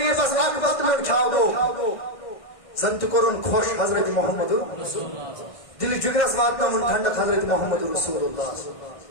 اکھ بتہٕ میوٚٹ کھیاو زن تہِ کوٚرُن خۄش حضرت محمد دل جگرس واتناوُن ٹھنڈک حضرت محمد رسول اللہ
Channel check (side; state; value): right; late; 1.6 ms